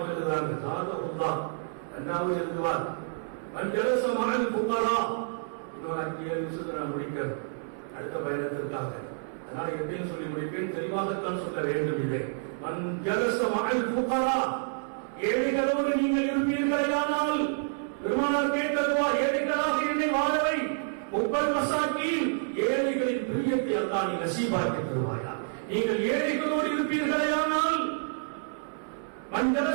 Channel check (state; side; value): silent; left; 57 dB below the other